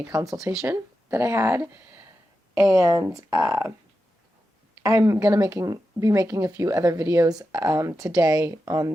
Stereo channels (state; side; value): normal; both; correlation 0.90